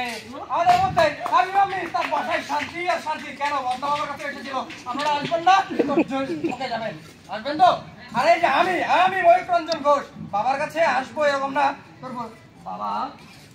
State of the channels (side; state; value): both; identical; correlation 1.00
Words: আমাদের মধ্যে আমি তার বাসায় শান্তি আর শান্তি। কেন? বদনা বাবার কাছে এসেছিল। আপনারা আসবেন না? ওকে যাবেন, আসবেন তো? আর এই যে আমি ময়ূক রঞ্জন ঘোষ বাবার কাছে আসবো এরকম না করবো। বাবা